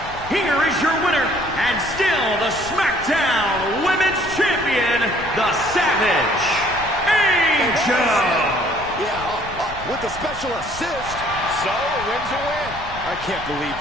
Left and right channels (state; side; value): noise; left; rumble, 14 dB below the sound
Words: Here is your winner, and still the SmackDown Women's Champion, the Savage, Angel. Yeah, with the special assist. So, a win's a win. I can't believe